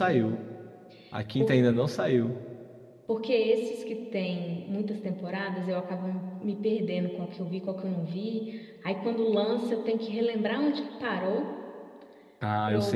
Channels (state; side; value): identical; both; correlation 1.00